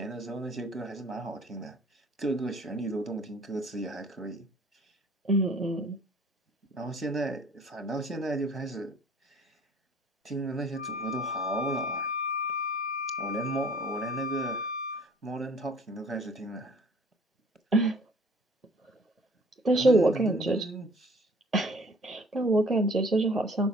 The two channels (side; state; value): both; normal; correlation 0.52